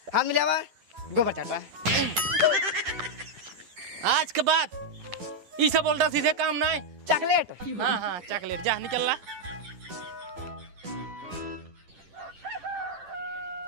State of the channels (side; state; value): left; late; 10 ms